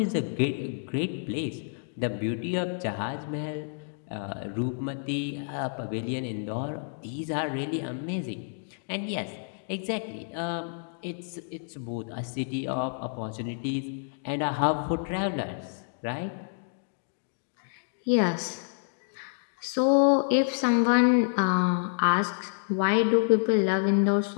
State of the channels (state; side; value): silent; right; digital silence